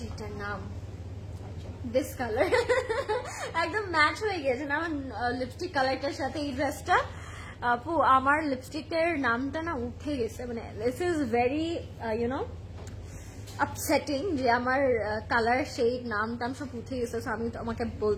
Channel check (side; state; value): both; identical; correlation 1.00